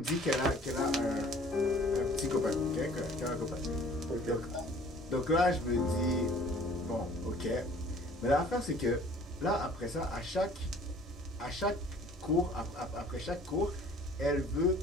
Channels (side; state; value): both; normal; correlation 0.52